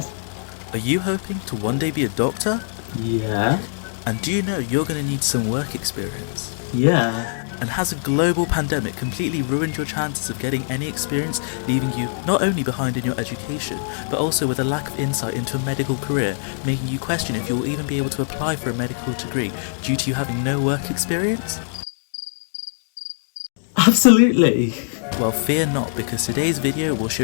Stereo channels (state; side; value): silent; right; digital silence